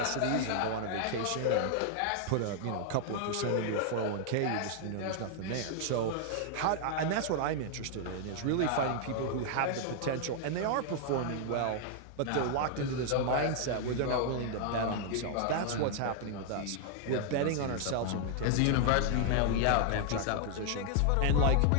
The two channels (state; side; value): different; both; correlation 0.00